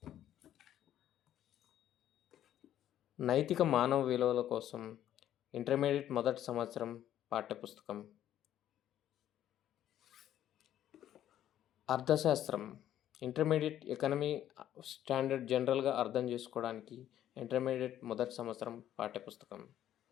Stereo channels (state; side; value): quieter; right; 11.6 dB